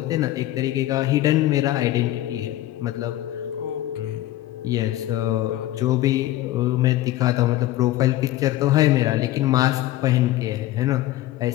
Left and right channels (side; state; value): right; quieter; 15.0 dB